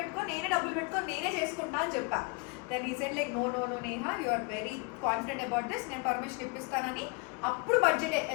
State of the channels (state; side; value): quieter; right; 29.9 dB